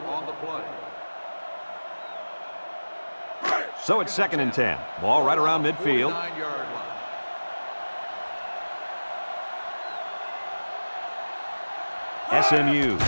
on the play. So it's second and 10. Ball right around midfield. 49-yard line. SMU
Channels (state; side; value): inverted; both; correlation -1.00